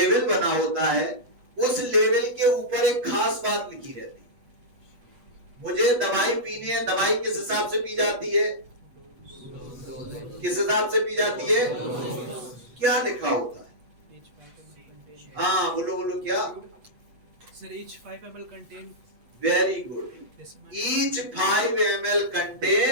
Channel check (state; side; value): late; left; 8.1 ms